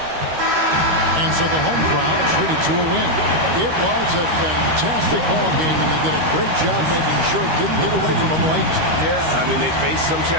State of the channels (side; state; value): left; late; 13 ms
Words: And so the home crowd treated to a win. It was a fantastic ball game, and they did a great job making sure it didn't get away from them late. Yeah, I mean, they faced some